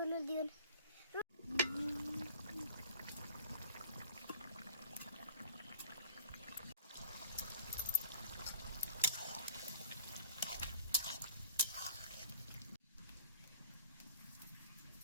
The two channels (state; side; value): inverted; both; correlation -0.49